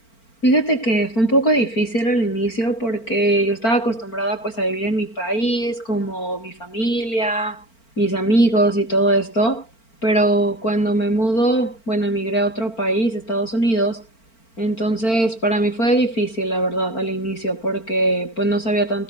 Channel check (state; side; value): late; right; 4.4 ms